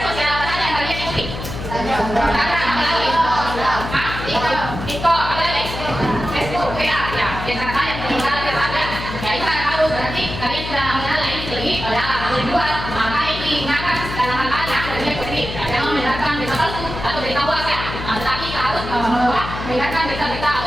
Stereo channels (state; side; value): noise; left; hum, 8 dB below the sound